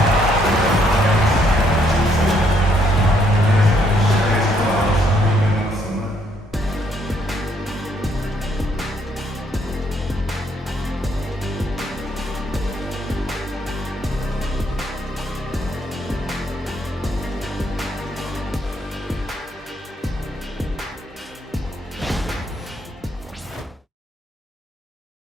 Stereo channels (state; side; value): normal; both; correlation 0.70